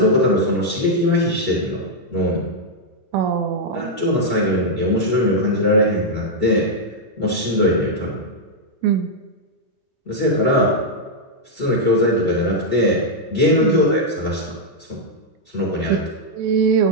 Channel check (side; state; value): both; normal; correlation -0.04